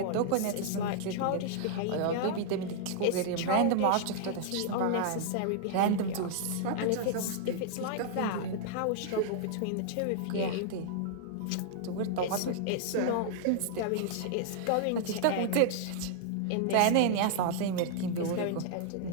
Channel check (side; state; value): both; different; correlation -0.01